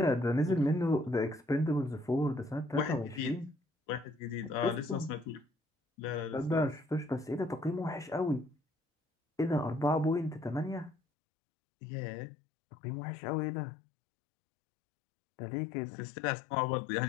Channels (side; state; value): right; drops out; at 11.0 s